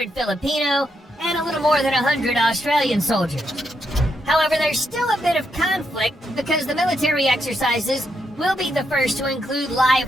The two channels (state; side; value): normal; both; correlation 0.80